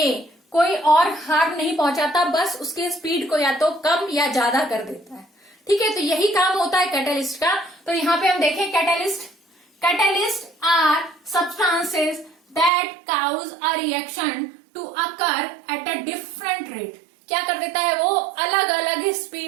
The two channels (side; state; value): left; drops out; at 12.7 s